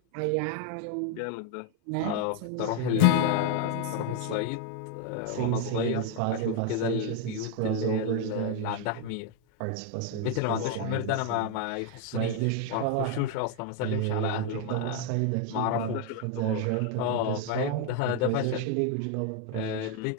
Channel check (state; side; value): different; both; correlation 0.01